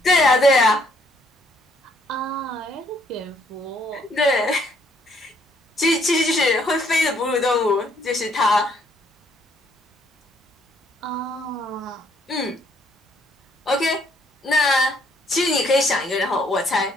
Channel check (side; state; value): both; normal; correlation 0.67